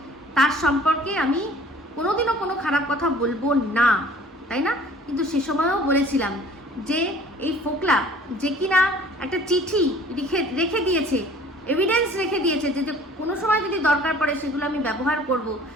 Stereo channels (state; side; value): normal; both; correlation 0.51